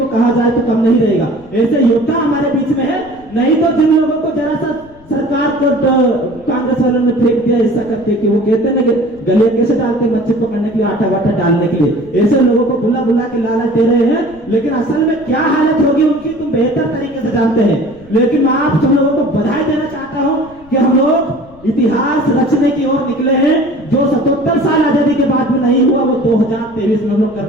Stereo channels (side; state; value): left; noise; rumble, 25 dB below the sound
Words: कहा जाए तो कम नहीं रहेगा, ऐसे योद्धा हमारे बीच में है। नहीं तो जिन लोगों को जरा सा सरकार को कांग्रेस वालों ने फेंक दिया ऐसा करके कि वो कहते हैं ना कि गले कैसे डालते हैं मच्छी पकड़ने के लिए, आटा वाटा डालने के लिए, ऐसे लोगों को बुला बुला के लालच दे रहे हैं। लेकिन असल में क्या हालत होगी उनकी तुम बेहतर तरीके से जानते हैं। लेकिन मैं आप सब लोगों को बधाई देना चाहता हूं कि हम लोग इतिहास रचने की ओर निकले हैं। जो 77 साल आजादी के बाद में नहीं हुआ वो 2023 में हम लोग